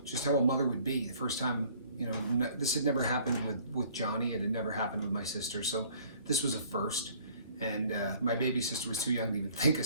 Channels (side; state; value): both; inverted; correlation -0.55